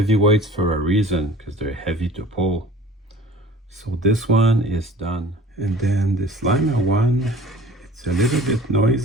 for a reason, because they're heavy to pull. So this one is done. And then this Lima one, it's a little bit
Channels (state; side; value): normal; both; correlation 0.46